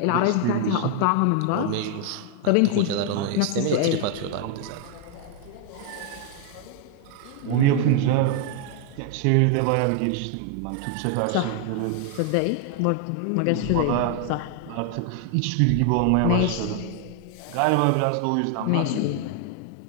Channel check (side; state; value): both; different; correlation 0.00